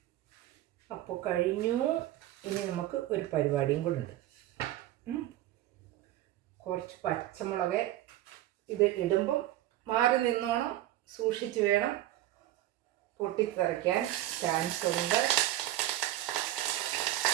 അപ്പോൾ കഴിഞ്ഞു. ഇനി നമുക്ക് ഒരു പരിപാടിയും കൂടെ ഉണ്ട്. കുറച്ച് പച്ചമുളക് ഇത് ഇടുമ്പം മാറി നിന്നോണം, സൂക്ഷിച്ച് വേണം, പൊട്ടിത്തെറിക്കാൻ ചാൻസ് ഉണ്ട്.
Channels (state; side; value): quieter; left; 14.4 dB